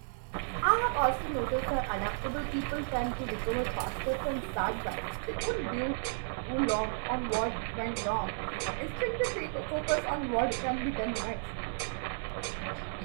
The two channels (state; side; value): silent; left; 56 dB below the other